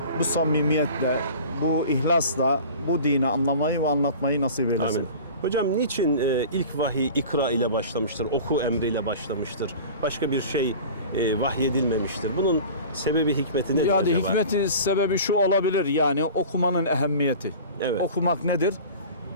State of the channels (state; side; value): inverted; both; correlation -0.39